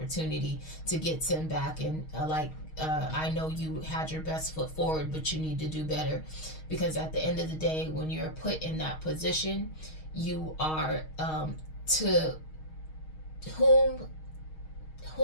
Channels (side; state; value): right; late; 6.4 ms